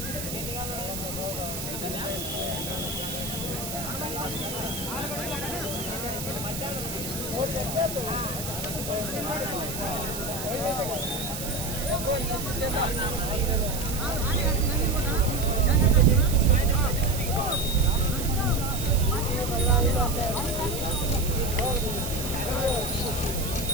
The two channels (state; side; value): noise; right; hiss, 7 dB below the sound